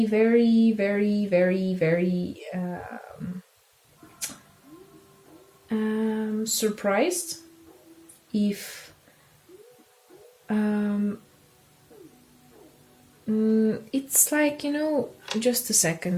very, very, very surprised if um it's like, just a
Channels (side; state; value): both; identical; correlation 1.00